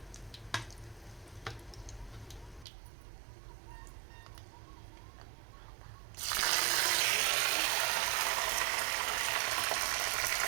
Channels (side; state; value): left; drops out; at 2.7 s